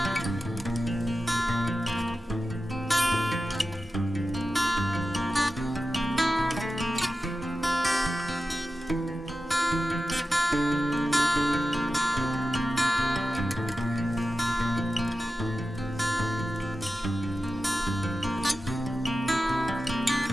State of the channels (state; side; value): normal; both; correlation 0.93